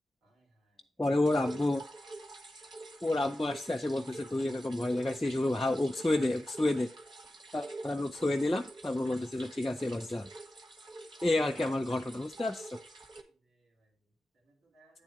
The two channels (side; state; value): both; normal; correlation 0.93